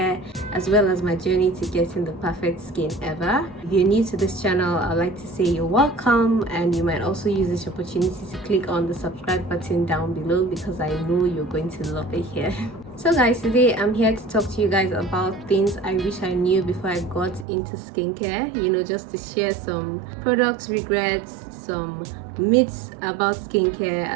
as well as my journey to getting the perfect skin ever. If you're new to this channel, I'd like to say you're welcome, and you might also use this opportunity to click on the subscribe button down below because I know you're going to love it here. So guys, today I'm here to talk to you guys about things I wish I knew before I got into skincare, just to share some products regrets, some myths about skincare,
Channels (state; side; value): drops out; left; at 17.4 s